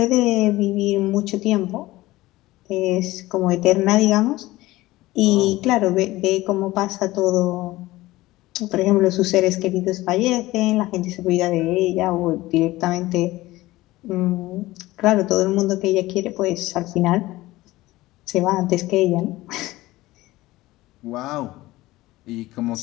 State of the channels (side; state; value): right; quieter; 18.1 dB